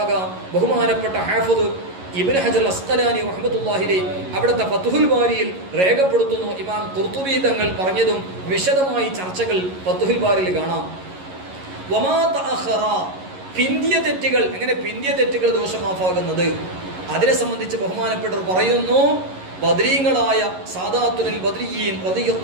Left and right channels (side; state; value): left; late; 11 ms